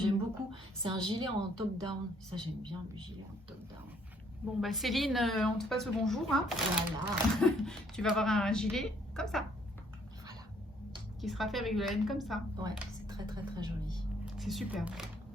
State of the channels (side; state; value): both; normal; correlation 0.65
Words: beaucoup. C'est un gilet en top-down. Ça, j'aime bien le gilet en top-down. Bon bah Céline, on te passe le bonjour. Hein. Voilà. Tu vas avoir un gilet comme ça. Voilà. Qui sera fait avec de la laine comme ça. Ouais, c'est très très très joli. C'est super.